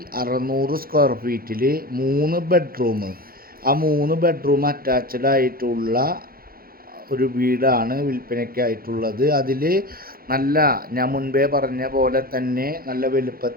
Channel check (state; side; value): late; left; 0.43 ms